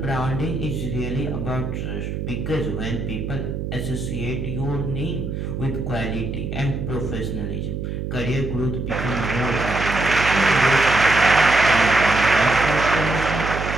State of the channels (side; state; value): right; noise; hum, 5 dB below the sound